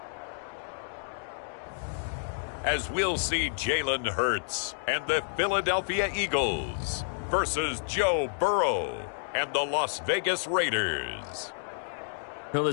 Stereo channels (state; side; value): silent; right; digital silence